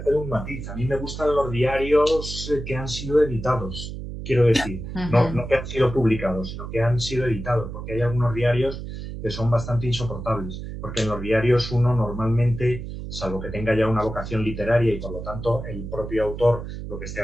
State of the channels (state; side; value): noise; right; hum, 8 dB below the sound